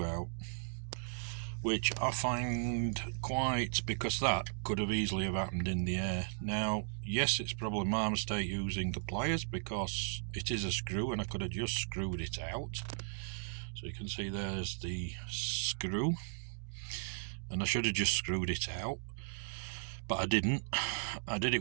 out, which I find quite, because that could have easily have happened in the air. Now, yes, it's probably my mistake using the pliers, because it is a screw and I could have just screwed it out. So you can see there's the screw, and I should have just screwed it out, but I didn't. I did it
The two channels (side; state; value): left; silent; digital silence